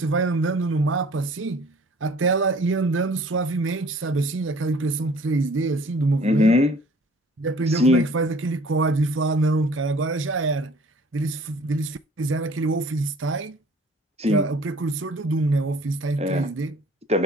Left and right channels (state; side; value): normal; both; correlation 0.52